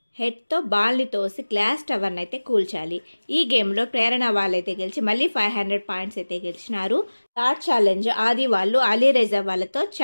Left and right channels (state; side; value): inverted; both; correlation -1.00